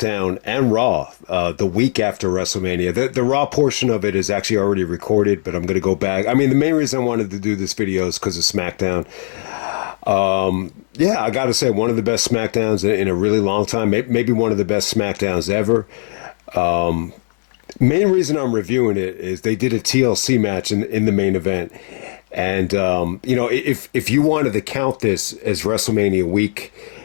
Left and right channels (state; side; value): silent; right; 67 dB below the other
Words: and Raw the week after WrestleMania. The Raw portion of it is actually already recorded, but I'm going to go back. I mean, the main reason I wanted to do this video is because of SmackDown. Yeah, I got to say, one of the best SmackDowns in a really long time, maybe one of the best SmackDowns ever. Main reason I'm reviewing it is they did a TLC match in the main event. And, you know, if you wanted to count this as WrestleMania week,